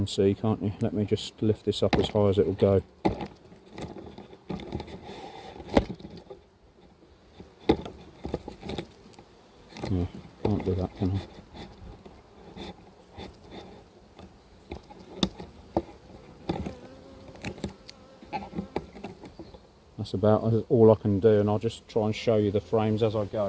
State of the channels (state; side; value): identical; both; correlation 1.00